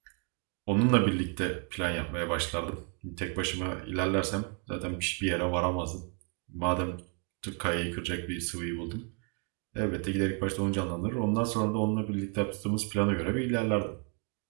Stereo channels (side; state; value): left; quieter; 36.0 dB